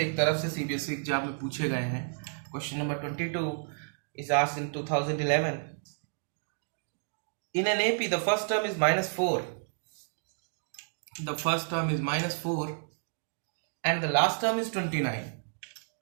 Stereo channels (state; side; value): silent; left; digital silence